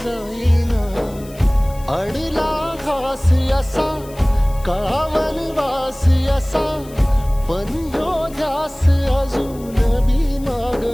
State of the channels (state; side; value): noise; left; hiss, 22 dB below the sound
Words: जाईना. अडला घास असा काळा वनवास असा, पण ह्यो ध्यास अजून बी माग